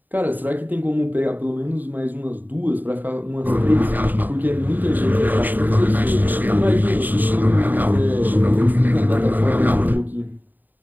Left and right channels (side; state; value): left; late; 0.087 ms